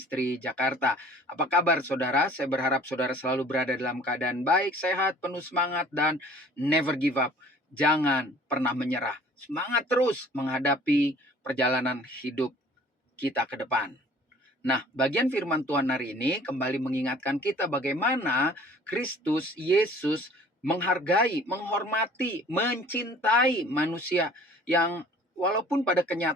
Jakarta. Apa kabar saudara? Saya berharap saudara selalu berada dalam keadaan baik, sehat, penuh semangat, dan never give up. Jangan pernah menyerah. Semangat terus menghadapi perjalanan hidup kita ke depan. Nah, bagian firman Tuhan hari ini kembali mengingatkan kita bagaimana Kristus Yesus menghargai, menghormati, mencintai manusia yang walaupun pada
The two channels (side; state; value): both; normal; correlation 0.51